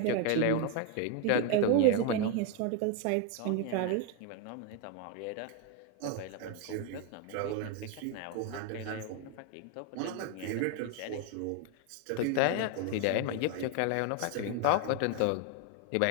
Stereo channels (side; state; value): both; different; correlation 0.01